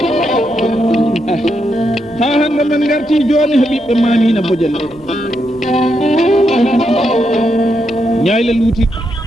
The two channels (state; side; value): normal; both; correlation 0.82